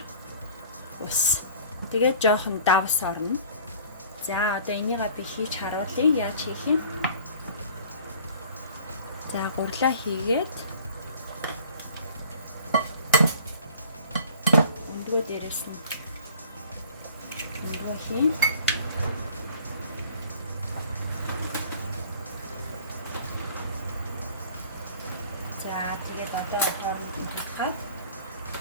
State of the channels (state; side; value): inverted; both; correlation -0.48